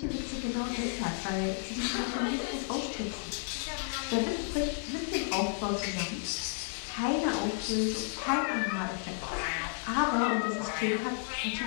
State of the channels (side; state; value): right; silent; 56 dB below the other